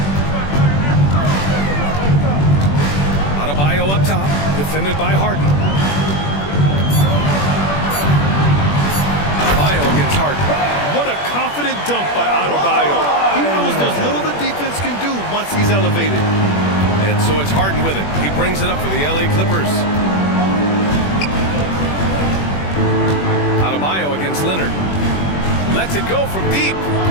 Adebayo up top, defended by Harden. Adebayo against Harden. What a confident dunk by Adebayo. He knows there's little the defense can do once he's elevated. And so it's Harden with it. He brings it up for the LA Clippers. Adebayo against Leonard. Lets it go from deep.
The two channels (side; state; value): right; late; 21 ms